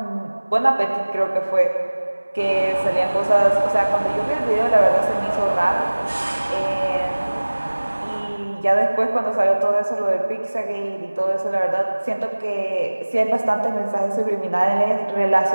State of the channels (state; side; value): inverted; both; correlation -1.00